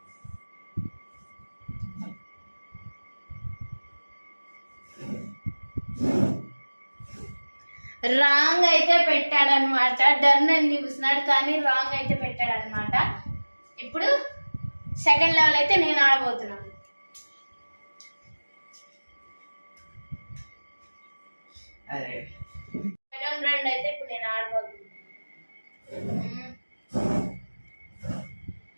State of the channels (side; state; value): both; inverted; correlation -1.00